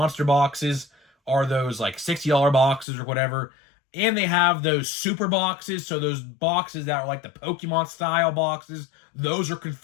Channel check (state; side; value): drops out; right; at 2.9 s